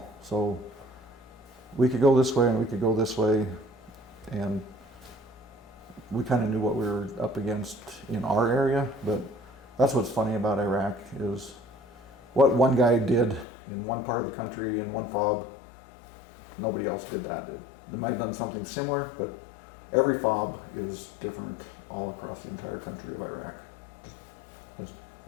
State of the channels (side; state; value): right; drops out; at 13.5 s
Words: So we could go this way and we could go this way. And we kind of knew what we were up against in our area. But that's what's funny about Iraq is what one guy did in one part of the country in one FOB, nobody else did that. They might have done something similar, but every FOB is different all across the entire country of Iraq.